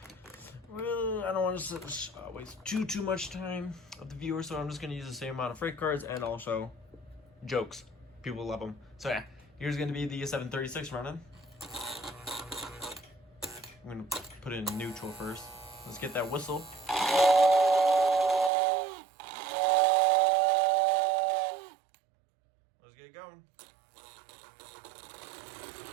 I don't want to waste too much time of the viewer, so I'm just gonna use the same amount of freight cars and also jokes. People love them. So yeah, here's gonna be the 736 running. I'm gonna put it in neutral first. Let's get that whistle. Let's get going.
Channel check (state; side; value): drops out; left; at 18.5 s